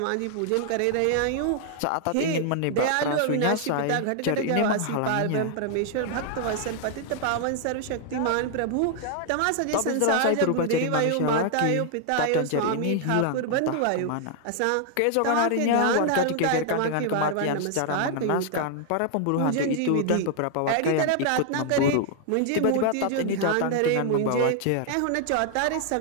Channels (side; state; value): both; different; correlation 0.00